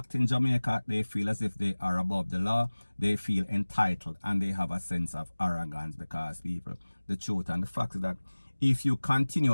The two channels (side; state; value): both; inverted; correlation -1.00